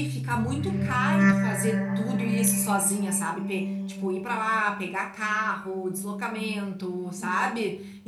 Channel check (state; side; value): identical; both; correlation 1.00